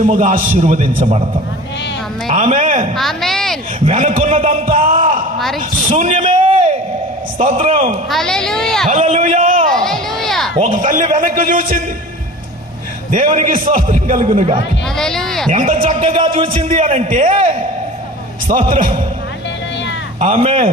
ఆశీర్వదించబడతావు. ఆమేన్, ఆమేన్. వెనుకున్నదంతా శూన్యమే. స్తోత్రం, హల్లెలూయా, హల్లెలూయా. హల్లెలూయా. ఒక తల్లి వెనక్కి చూసింది, దేవునికి స్తోత్రం కలుగునుగా. హల్లెలూయా. ఎంత చక్కగా చూసింది అనంటే, స్తోత్రం,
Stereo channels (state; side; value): normal; both; correlation 0.38